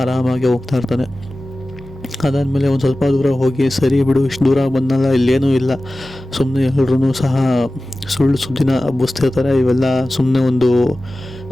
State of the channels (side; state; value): both; normal; correlation 0.96